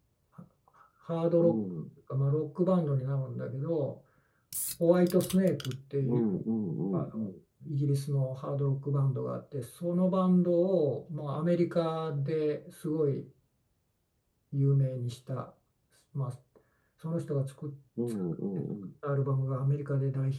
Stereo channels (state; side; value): identical; both; correlation 1.00